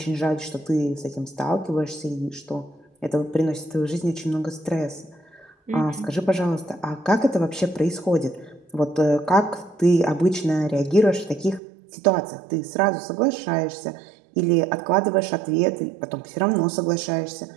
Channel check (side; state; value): left; drops out; at 11.6 s